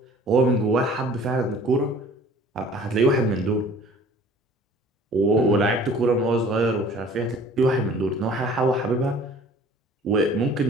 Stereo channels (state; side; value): normal; both; correlation 0.49